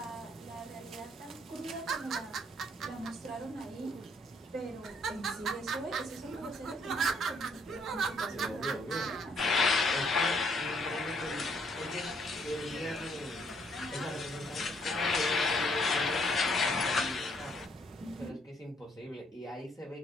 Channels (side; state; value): both; normal; correlation 0.68